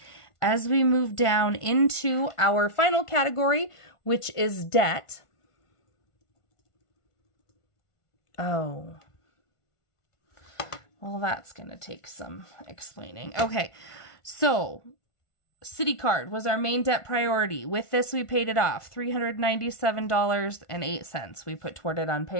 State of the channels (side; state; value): right; late; 1.5 ms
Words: as we move down into our final category, which is debt. Oh. Well, that's going to take some explaining. Okay, so Citi card was our main debt priority. With this, we paid it off, $397.08. We put toward it on